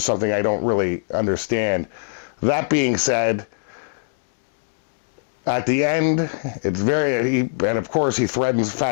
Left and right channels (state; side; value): silent; right; digital silence